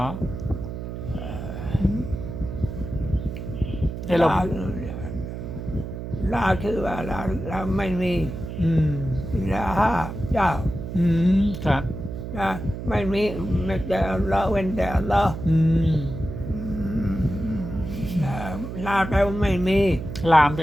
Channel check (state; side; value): noise; right; hum, 7 dB below the sound